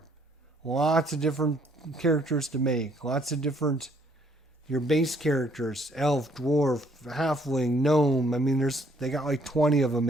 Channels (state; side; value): normal; both; correlation 0.65